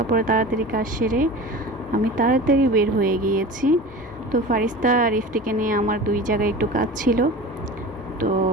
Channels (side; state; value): both; normal; correlation 0.34